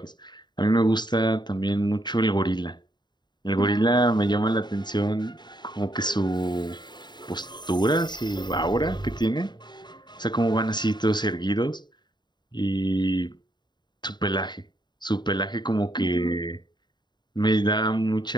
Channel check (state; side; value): late; right; 0.21 ms